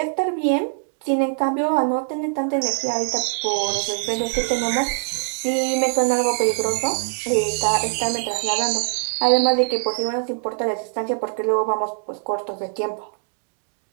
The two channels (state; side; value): silent; left; 64 dB below the other